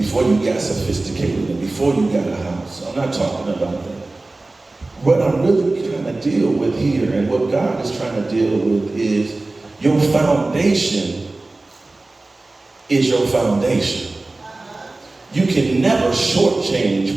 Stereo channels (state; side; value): quieter; left; 3.1 dB